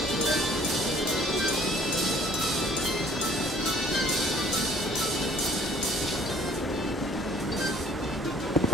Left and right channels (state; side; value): normal; both; correlation 0.55